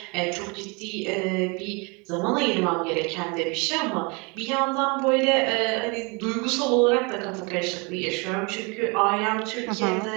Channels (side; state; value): left; quieter; 30.0 dB